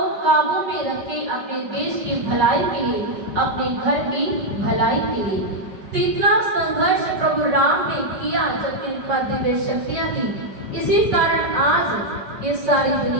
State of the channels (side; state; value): left; late; 5.2 ms